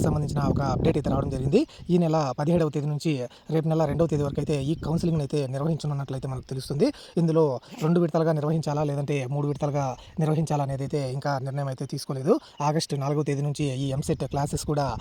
సంబంధించిన ఒక అప్డేట్ అయితే రావడం జరిగింది. ఈ నెల 17వ తేదీ నుంచి రేపు నెల 2వ తేదీ వరకు అయితే ఈ కౌన్సిలింగ్‌ని అయితే నిర్వహించనున్నట్లయితే మనకు తెలుస్తుంది. ఇందులో 2 విడతలుగా నిర్వహించాలా లేదంటే 3 విడతలుగా నిర్వహించాలా అనేది అయితే ఇంకా నిర్ణయం అయితే తీసుకోలేదు. ఆగస్టు 4వ తేదీ నుంచి ఈ ఎంసెట్ క్లాసెస్ కూడా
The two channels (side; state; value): both; identical; correlation 1.00